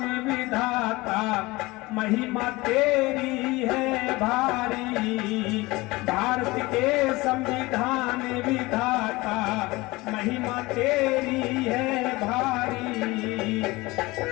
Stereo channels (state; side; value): quieter; right; 21.6 dB